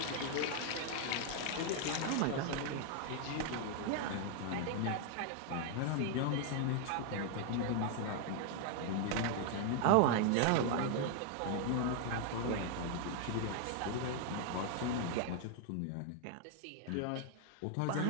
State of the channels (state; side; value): different; both; correlation 0.00